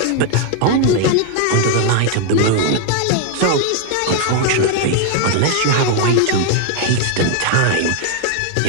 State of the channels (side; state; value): both; different; correlation 0.01